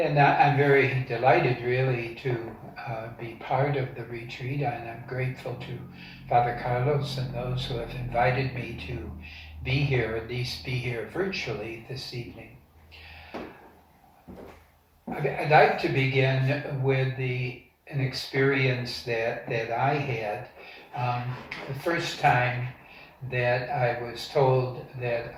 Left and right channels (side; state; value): both; identical; correlation 1.00